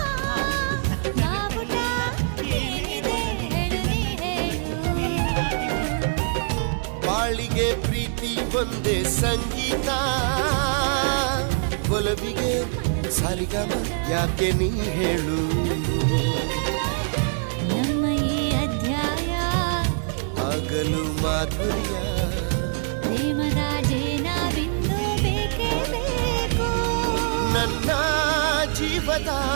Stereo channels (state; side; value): silent; left; digital silence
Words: ಬಾವುಟ ಏನಿದೆ ಹೇಳು ನೀ ಹೇಳು. ಬಾಳಿಗೆ ಪ್ರೀತಿ ಒಂದೇ ಸಂಗೀತ, ಒಲವಿಗೆ ಸರಿಗಮ ಯಾಕೆ ನೀ ಹೇಳು. ನಮ್ಮ ಈ ಅಧ್ಯಾಯ ಆಗಲು ಮಾಧುರ್ಯ, ಪ್ರೇಮದ ಜೇನ ಬಿಂದು ಬೇಕೇ ಬೇಕು. ನನ್ನ ಜೀವದ